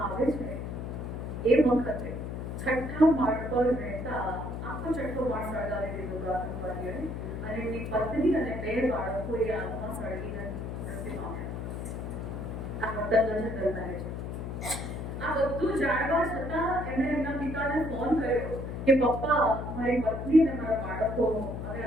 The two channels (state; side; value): noise; left; hum, 5 dB below the sound